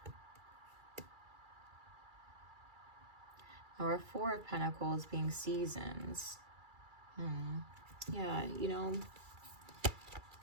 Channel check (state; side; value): late; left; 2.3 ms